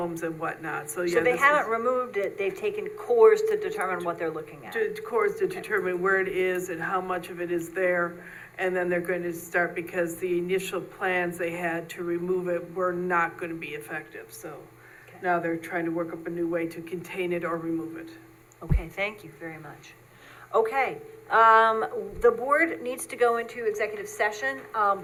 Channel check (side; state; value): both; identical; correlation 1.00